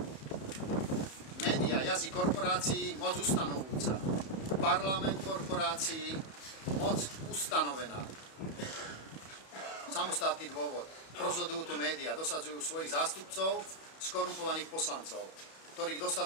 Média, jazyk korporácií, moc ustanovujúca. Parlament korporácií, moc ustanovená. Samostatný dôvod. Rozhodujú tu médiá, dosadzujú svojich zástupcov, skorumpovaných poslancov, ktorých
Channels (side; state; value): right; late; 31 ms